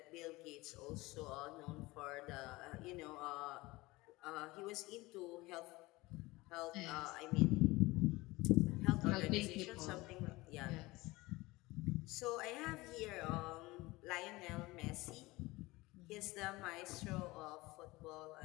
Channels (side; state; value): right; quieter; 20.9 dB